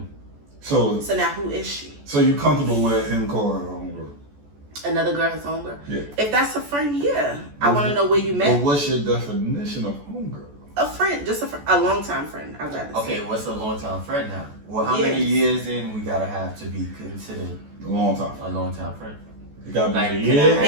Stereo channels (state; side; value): late; left; 14 ms